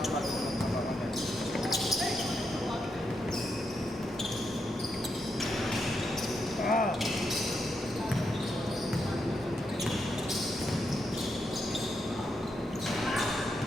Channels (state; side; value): normal; both; correlation 0.82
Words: ako bago magkakapagod. Ah!